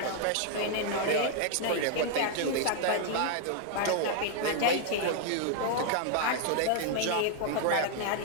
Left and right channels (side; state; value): both; different; correlation -0.01